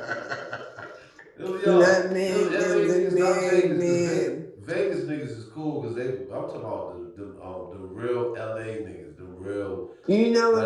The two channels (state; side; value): identical; both; correlation 1.00